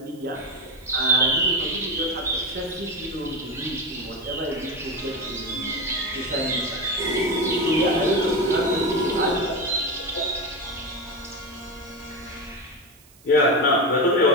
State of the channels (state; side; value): noise; right; hiss, 27 dB below the sound